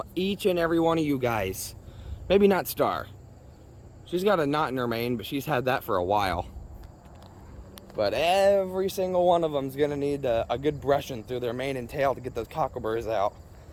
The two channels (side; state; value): both; identical; correlation 1.00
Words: each and every one of you guys. Maybe not Star. She's got a knot in her mane, but she's had that for a while. But every single one of them's gonna need a good brushing through their mane and tail to get those cockleburrs out.